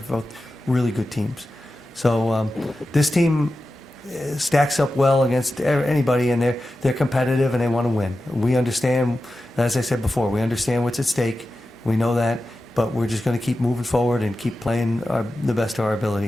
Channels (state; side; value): normal; both; correlation 0.93